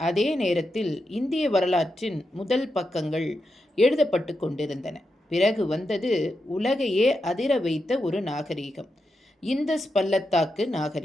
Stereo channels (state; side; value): normal; both; correlation 0.86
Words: அதே நேரத்தில் இந்திய வரலாற்றின் முதல் பக்கங்கள் எழுதப்பட்டு கொண்டிருந்தன. பிறகு வந்தது உலகையே அதிர வைத்த ஒரு நாகரீகம், இந்தஸ் பள்ளத்தாக்கு